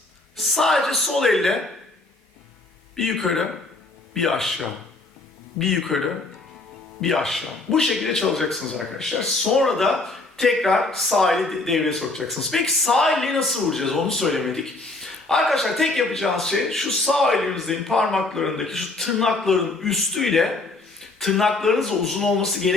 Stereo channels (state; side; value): quieter; right; 3.1 dB